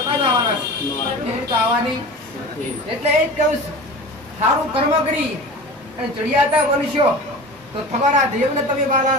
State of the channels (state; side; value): normal; both; correlation 0.34